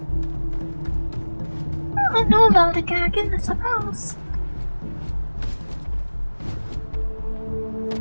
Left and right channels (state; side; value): inverted; both; correlation -1.00